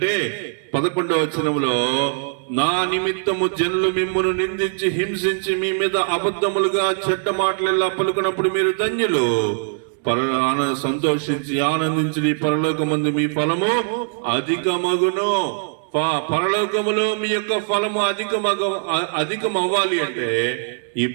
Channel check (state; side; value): silent; left; digital silence